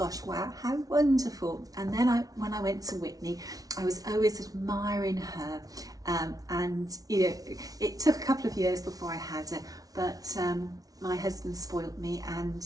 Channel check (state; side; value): late; left; 0.18 ms